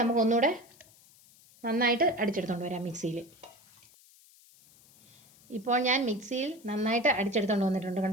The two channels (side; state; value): left; noise; hiss, 27 dB below the sound